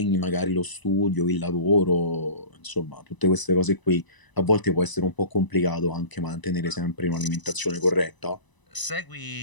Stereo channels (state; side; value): late; right; 1.0 ms